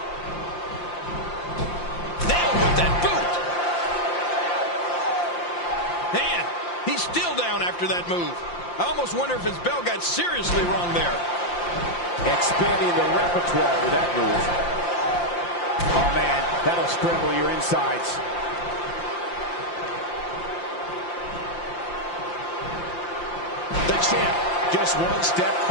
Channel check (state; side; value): late; right; 5.8 ms